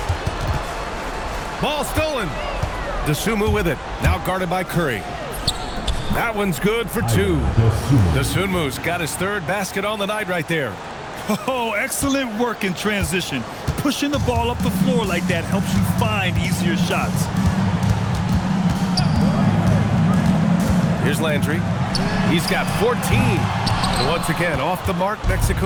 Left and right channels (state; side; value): identical; both; correlation 1.00